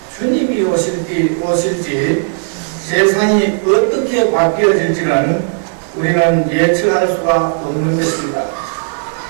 주님이 오실지 세상이 어떻게 바뀌어질지는 우리는 예측할 수가 없는 것입니다.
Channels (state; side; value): silent; left; digital silence